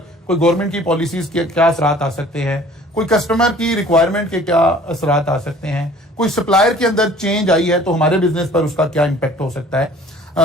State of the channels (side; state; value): both; normal; correlation 0.50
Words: कोई गवर्नमेंट की पॉलिसीज के क्या असरात आ सकते हैं, कोई कस्टमर की रिक्वायरमेंट के क्या असरात आ सकते हैं, कोई सप्लायर के अंदर चेंज आई है तो हमारे बिजनेस पर उसका क्या इंपैक्ट हो सकता है।